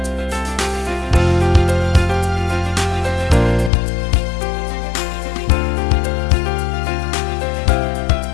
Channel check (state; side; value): drops out; right; at 3.7 s